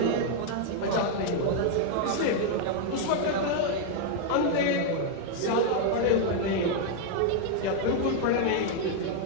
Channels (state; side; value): different; both; correlation 0.00